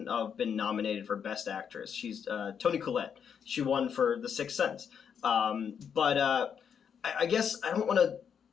have been nominated for Best Actress. She's Toni Collette. She won for The Sixth Sense. But I guess I don't want to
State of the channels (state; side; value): quieter; right; 7.5 dB